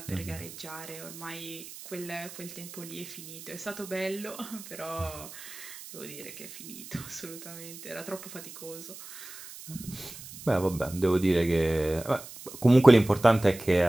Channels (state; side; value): noise; right; hiss, 14 dB below the sound